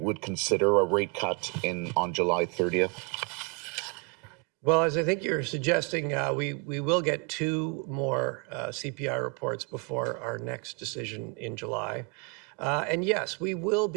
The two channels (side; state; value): left; quieter; 31.7 dB